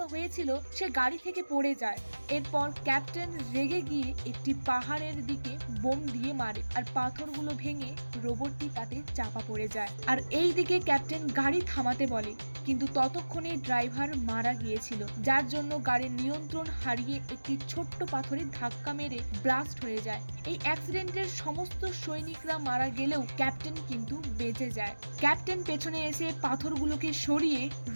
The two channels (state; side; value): inverted; both; correlation -1.00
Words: হয়েছিল, সে গাড়ি থেকে পড়ে যায়। এরপর ক্যাপ্টেন রেগে গিয়ে একটি পাহাড়ের দিকে বোম দিয়ে মারে আর পাথরগুলো ভেঙে রোবটটি তাতে চাপা পড়ে যায়। আর এই দিকে ক্যাপ্টেন গাড়ি থামাতে বলে, কিন্তু ততক্ষণে ড্রাইভার মারা গিয়েছিল, যার জন্য গাড়ির নিয়ন্ত্রণ হারিয়ে একটি ছোট্ট পাথরের ধাক্কা মেরে ব্লাস্ট হয়ে যায়। এই অ্যাক্সিডেন্টের সমস্ত সৈনিকরা মারা গেলেও ক্যাপ্টেন কিন্তু বেঁচে যায়। ক্যাপ্টেন পেছনে এসে পাথরগুলোকে সরিয়ে